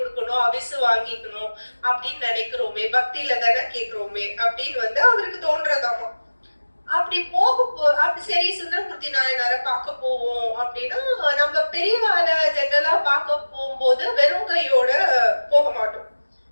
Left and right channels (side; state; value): both; inverted; correlation -1.00